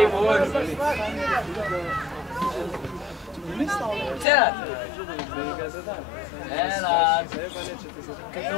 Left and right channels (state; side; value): drops out; right; at 4.2 s